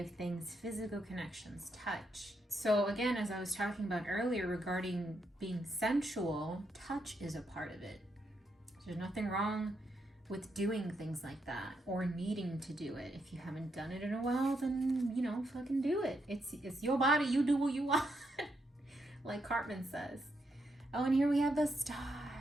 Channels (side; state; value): both; normal; correlation 0.80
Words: things, physical connections, touch. So again, as I was talking about earlier regarding being sensual, touch is a part of it. There's nothing wrong with doing things like that or needing to do it. If you haven't done it in a while, then, fucking do it. It's your body. You do what you want, like Cartman says. Oh, and here we have the star.